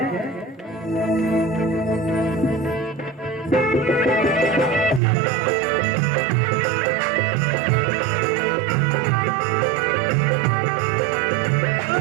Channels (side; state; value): left; drops out; at 5.0 s